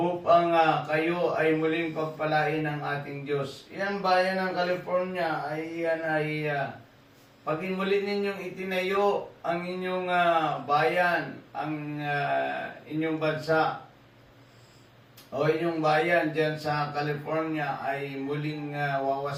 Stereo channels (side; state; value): both; identical; correlation 1.00